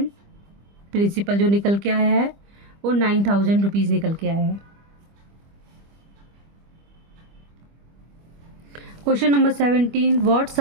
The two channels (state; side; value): late; left; 25 ms